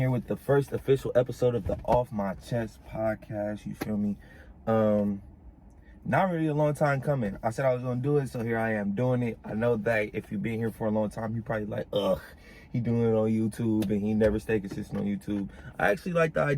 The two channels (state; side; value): identical; both; correlation 1.00